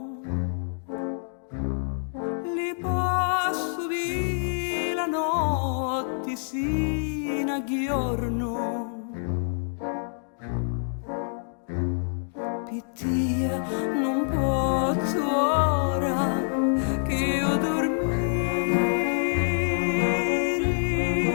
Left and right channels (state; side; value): silent; right; digital silence